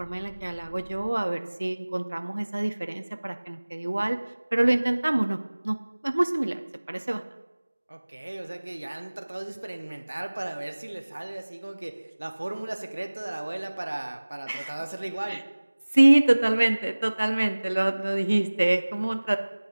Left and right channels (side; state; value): both; inverted; correlation -1.00